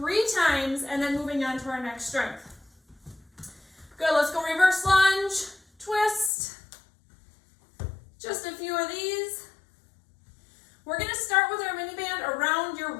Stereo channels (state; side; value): drops out; right; at 6.3 s